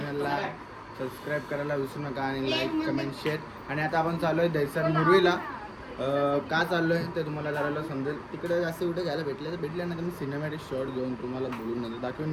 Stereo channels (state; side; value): identical; both; correlation 1.00